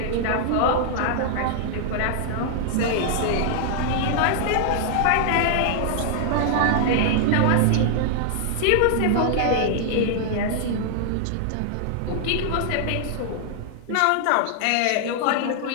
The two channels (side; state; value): both; different; correlation -0.01